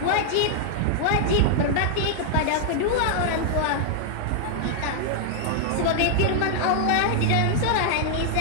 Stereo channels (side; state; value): both; different; correlation -0.01